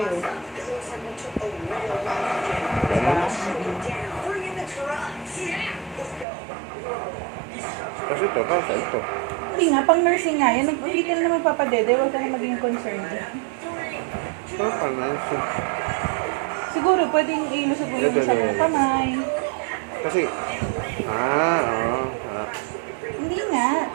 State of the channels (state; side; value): drops out; left; at 6.2 s